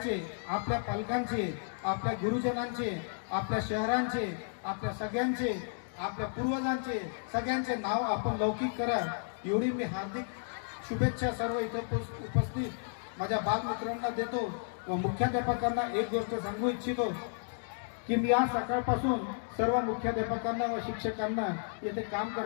आपल्या पालकांचे, आपल्या गुरुजनांचे, आपल्या शहरांचे, आपल्या सगळ्यांचे, आपल्या पूर्वजांचे सगळ्यांचे नाव आपण लौकिक करा. एवढी मी हार्दिक शुभेच्छा सर्व इथे उपस्थित माझ्या बालमित्रांना देतो व मुख्याध्यापकांना एक गोष्ट सांगू इच्छितो की मी आज सकाळपासून सर्व मुख्याध्यापकांना व शिक्षकांना येथे काम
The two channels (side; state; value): right; silent; digital silence